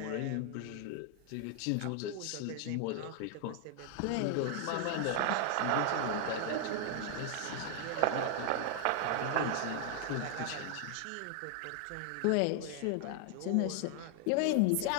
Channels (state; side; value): different; both; correlation 0.00